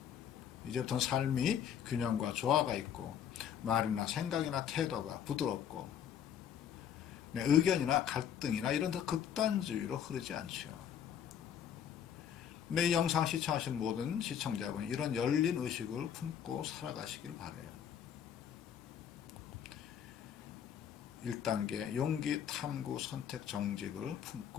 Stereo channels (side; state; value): right; quieter; 8.9 dB